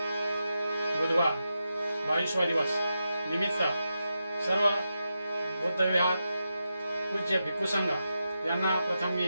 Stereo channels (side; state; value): both; inverted; correlation -0.88